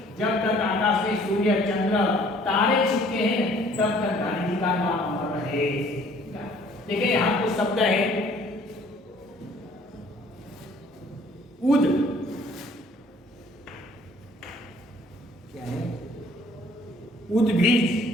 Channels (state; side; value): normal; both; correlation 0.57